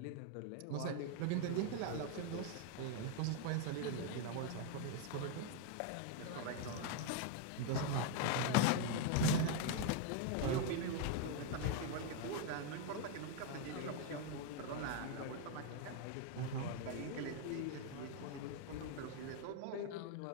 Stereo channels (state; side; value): different; both; correlation 0.01